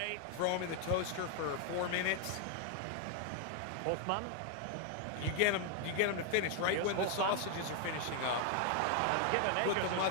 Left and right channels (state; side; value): different; both; correlation 0.00